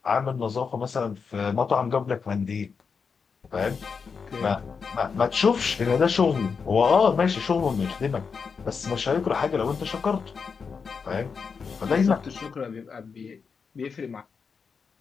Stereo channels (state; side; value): quieter; right; 5.6 dB